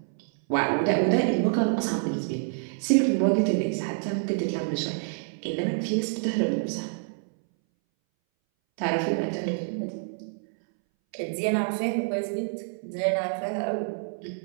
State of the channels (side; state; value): left; silent; 60 dB below the other